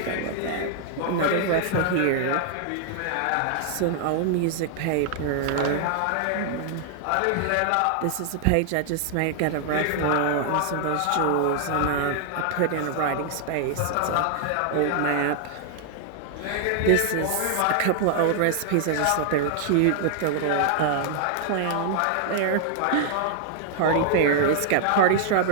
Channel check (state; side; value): different; both; correlation -0.01